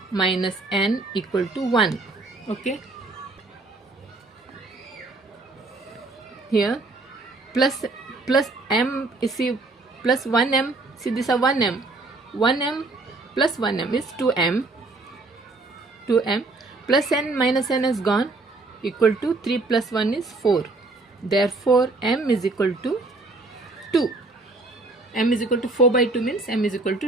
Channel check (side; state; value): left; quieter; 3.3 dB